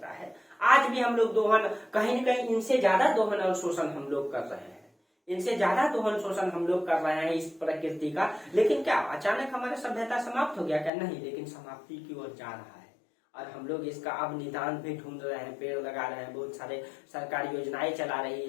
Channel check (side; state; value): right; drops out; at 10.9 s